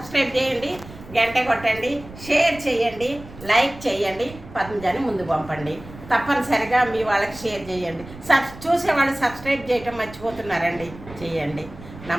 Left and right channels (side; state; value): right; noise; rumble, 17 dB below the sound